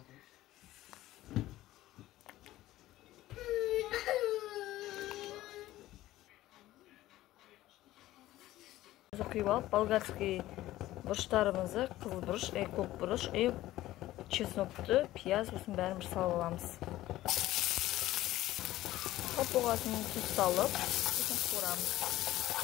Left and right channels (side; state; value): right; quieter; 15.5 dB